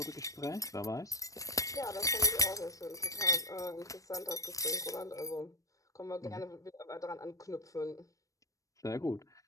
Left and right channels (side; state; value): right; late; 0.16 ms